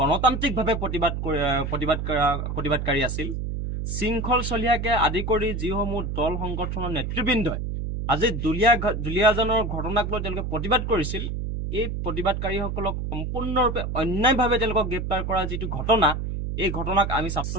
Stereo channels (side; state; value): right; noise; hum, 3 dB below the sound